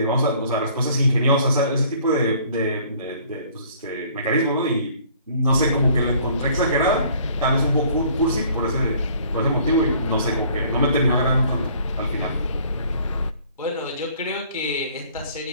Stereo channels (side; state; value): both; inverted; correlation -0.56